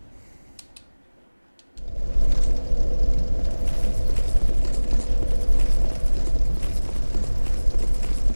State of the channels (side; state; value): both; inverted; correlation -1.00